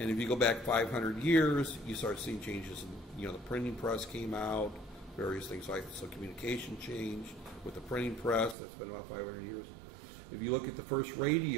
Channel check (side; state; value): left; drops out; at 8.6 s